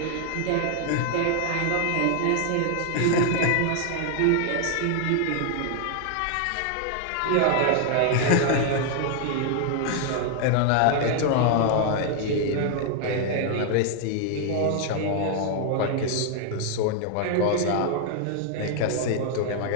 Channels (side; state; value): both; different; correlation 0.00